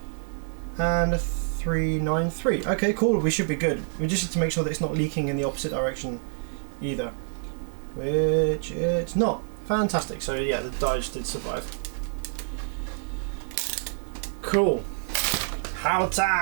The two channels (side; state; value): left; silent; 57 dB below the other